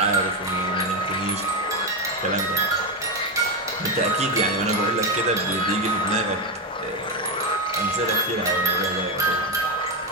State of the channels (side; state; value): both; normal; correlation 0.09